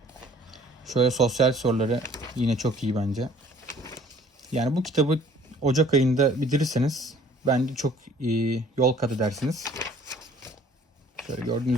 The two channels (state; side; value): normal; both; correlation 0.55